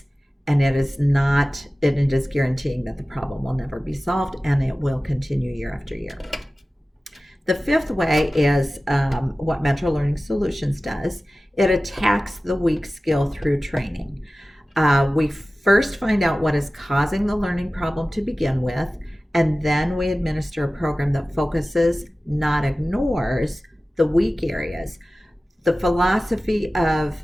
and it is guaranteeing that the problem will never be solved and it will continue year after year. The 5th way is what Metro Learning Solutions does. It attacks the weak skill through training. We first find out what is causing the learning problem to begin with, and then we administer a program that focuses, not ignores, the weak areas. The philosophy of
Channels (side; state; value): both; normal; correlation 0.96